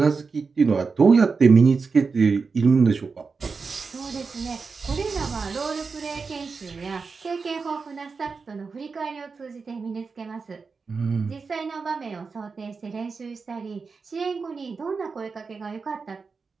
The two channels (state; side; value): quieter; left; 4.8 dB